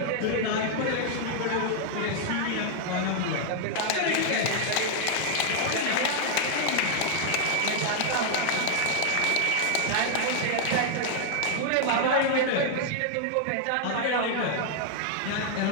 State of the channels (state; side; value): different; both; correlation 0.00